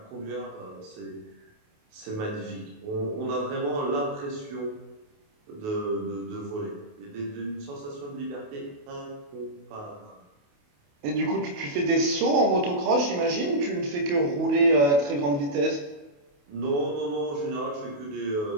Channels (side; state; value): left; late; 28 ms